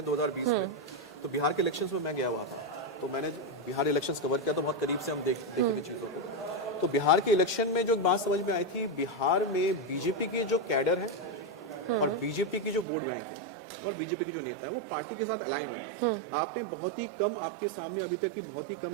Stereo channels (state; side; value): drops out; left; at 12.9 s